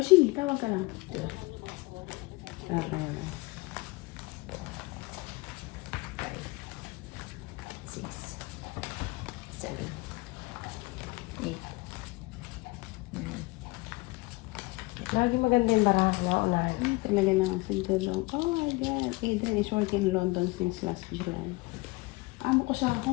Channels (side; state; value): right; quieter; 23.9 dB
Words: tawag ka lang. Ah, kaya na. 5, 6, 7, 8, 9. Lagi maganda yung baraha na unahan. Talaga na ang sintulong. Oh my God. Adrian is working in London since last July. Amo ko sa